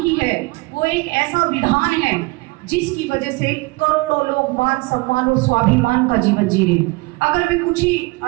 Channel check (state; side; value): quieter; left; 24.6 dB